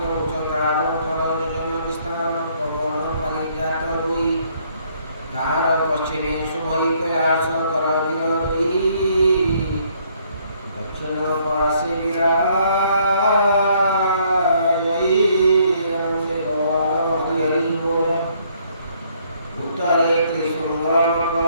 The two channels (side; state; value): both; inverted; correlation -0.66